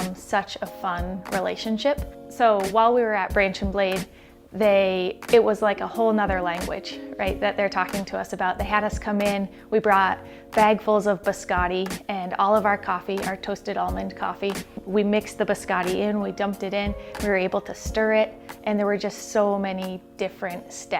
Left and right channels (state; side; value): identical; both; correlation 1.00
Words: such a fun relationship. So while we were at Branch and Blade, it was like a whole nother language, right, that they're talking to us about. They had us come in, we brought bagfuls of biscotti and all of our coffee, our toasted almond coffee. We mixed the biscotti in, we dumped it in, we were able to stir it, and there were just so many different